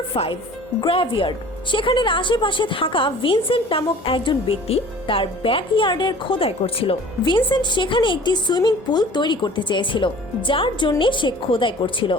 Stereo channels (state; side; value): normal; both; correlation 0.46